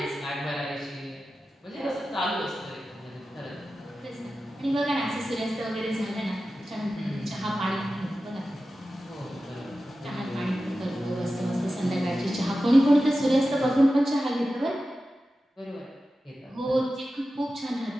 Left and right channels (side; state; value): both; normal; correlation 0.93